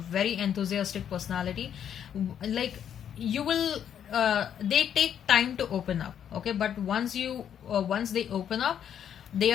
Very enthusiastic personality. Like, you will they take time to open up. Okay, but once they open up, they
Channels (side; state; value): right; quieter; 9.1 dB